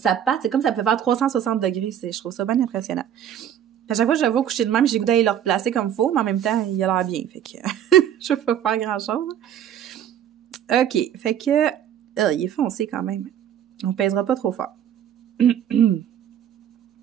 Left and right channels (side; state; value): left; quieter; 10.0 dB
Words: patte, c'est comme si ça peut faire 360 degrés. Je trouve ça bien impressionnant. À chaque fois que je le vois coucher de même, j'ai le goût d'aller le replacer comme il faut, mais en même temps, il a l'air bien. Fait que je peux pas faire grand-chose. OK. Fait que... il est foncé quand même. On pèsera pas trop fort.